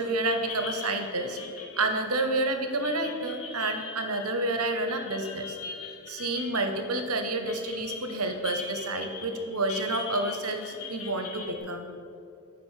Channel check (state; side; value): normal; both; correlation -0.09